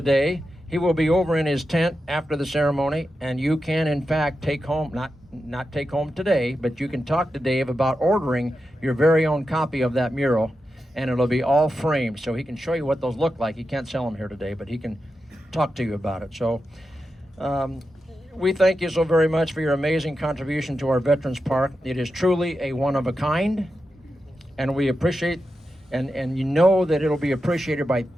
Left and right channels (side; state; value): both; normal; correlation 0.89